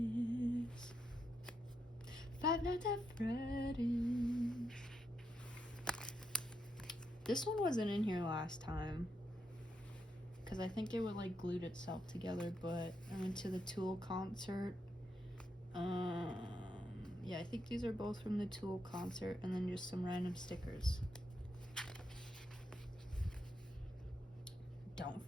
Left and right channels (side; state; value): both; normal; correlation 0.82